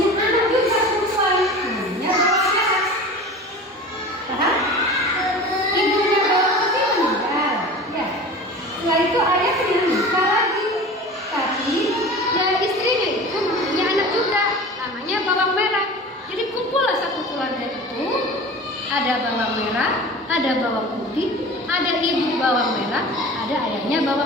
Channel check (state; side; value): normal; both; correlation 0.37